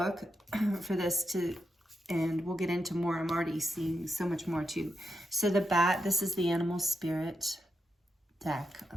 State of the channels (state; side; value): normal; both; correlation 0.85